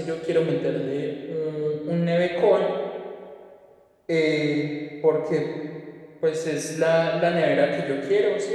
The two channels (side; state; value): both; identical; correlation 1.00